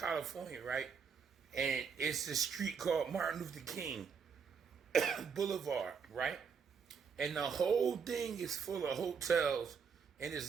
right? And it's a street called Martin Luther King Boulevard, right? And the whole thing is full of hotels, and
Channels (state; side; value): quieter; left; 6.2 dB